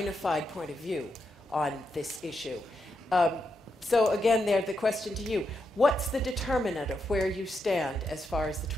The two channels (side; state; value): both; normal; correlation 0.83